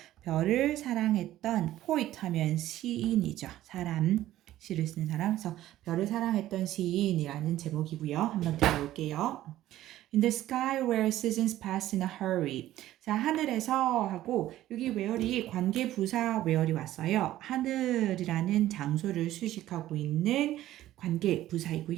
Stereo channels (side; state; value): left; quieter; 14.1 dB